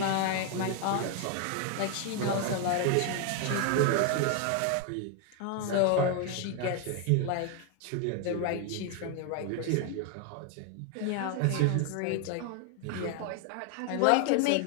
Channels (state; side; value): different; both; correlation 0.00